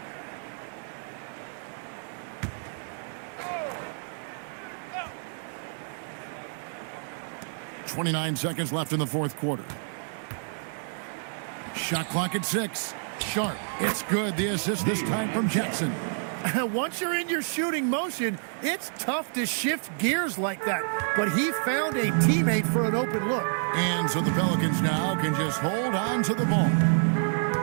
Oh. 29 seconds left in the fourth quarter. Shot clock at 6. Sharp. It's good. The assist this time from Jackson. Once you're in your shooting motion, it's tough to shift gears like that. But he found a teammate for an open look. And so the Pelicans now can just hold on to the ball.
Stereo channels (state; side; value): silent; left; digital silence